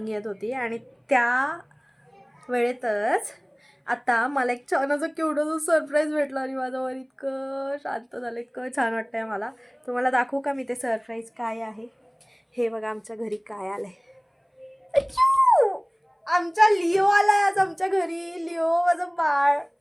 येत होती आणि त्या वेळेतच आता मला एक छान असं क्यूटचं सरप्राईज भेटलं आणि माझं मन इतकं शांत झालं, इतकं छान वाटतंय मला. तुम्हाला दाखवू का मी ते सरप्राईज काय आहे? हे बघा आमच्या घरी काय आलंय. अच्चू! आमचा लिओ आलाय आज आमच्या घरी. लिओ माझं बाळ.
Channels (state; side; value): identical; both; correlation 1.00